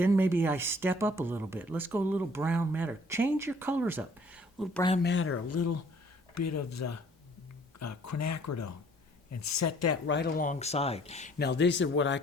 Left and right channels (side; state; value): both; normal; correlation 0.57